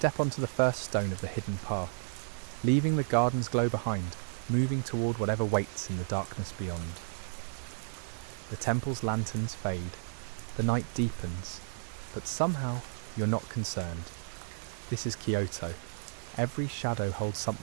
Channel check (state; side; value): silent; left; digital silence